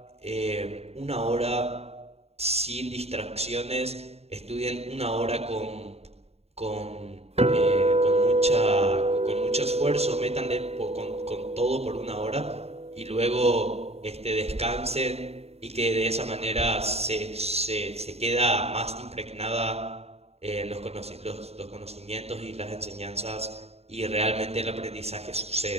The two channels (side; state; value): left; late; 0.30 ms